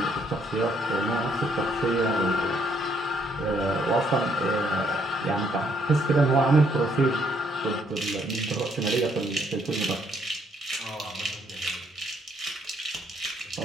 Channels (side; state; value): both; normal; correlation 0.69